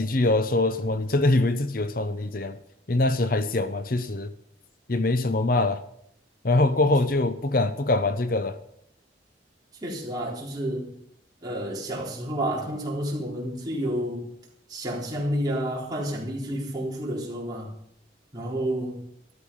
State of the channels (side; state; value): both; normal; correlation 0.48